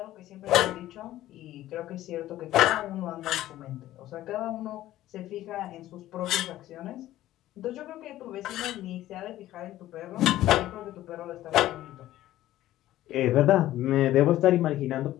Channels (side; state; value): right; quieter; 14.4 dB